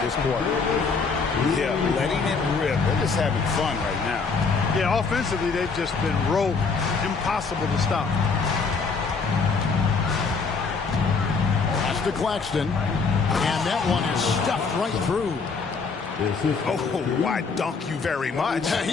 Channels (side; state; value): right; quieter; 4.8 dB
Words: this quarter. Yeah, letting it rip. They're just having fun right now. Yeah, offensively, they've just been rolling. Impossible to stop. Pass to Claxton. And that one is stuffed right through. Oh, why dunk you very much?